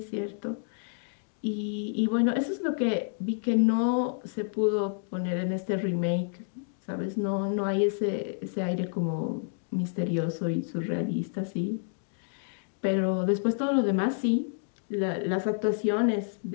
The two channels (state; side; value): silent; right; digital silence